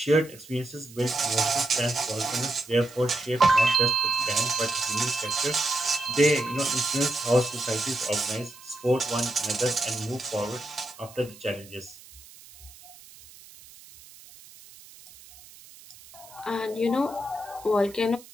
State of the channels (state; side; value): noise; right; hiss, 21 dB below the sound